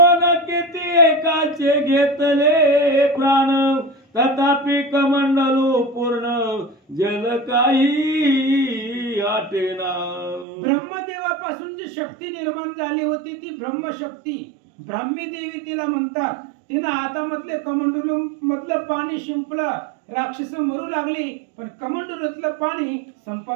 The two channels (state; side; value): drops out; left; at 10.5 s